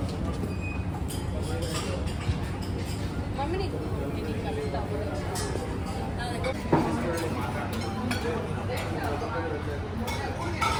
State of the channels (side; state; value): both; identical; correlation 1.00